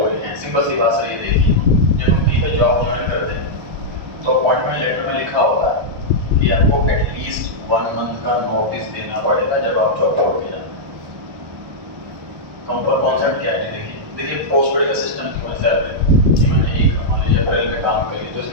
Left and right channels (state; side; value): late; left; 1.3 ms